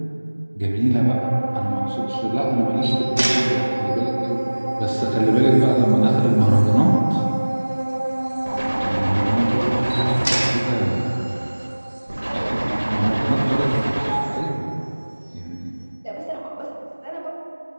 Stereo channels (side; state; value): both; inverted; correlation -1.00